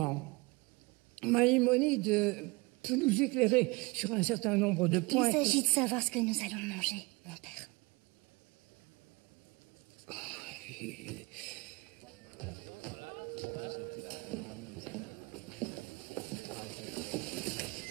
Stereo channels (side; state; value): left; quieter; 25.1 dB